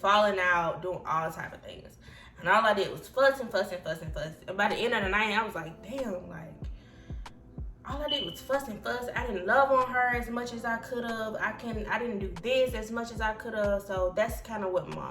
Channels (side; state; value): both; identical; correlation 1.00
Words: out, doing all type of things. And all I did was fussing. And by the end of the night, I was like, damn, like, all I did was fuss. I didn't love on her as much as I could have. I didn't do this as much as I could have. So that's kind of what